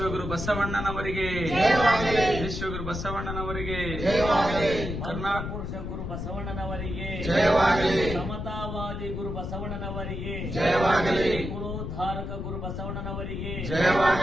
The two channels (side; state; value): left; noise; rumble, 5 dB below the sound